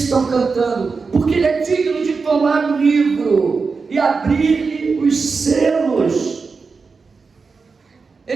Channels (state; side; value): quieter; left; 4.7 dB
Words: estão cantando? Porque ele é digno de tomar o livro e abrir-lhe os selos.